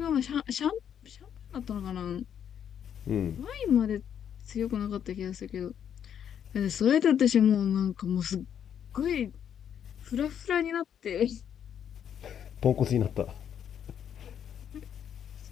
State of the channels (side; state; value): right; quieter; 8.9 dB